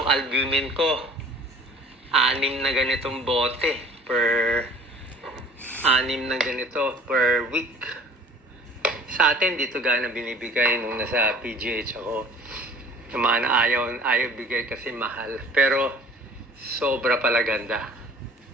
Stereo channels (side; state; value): both; normal; correlation 0.48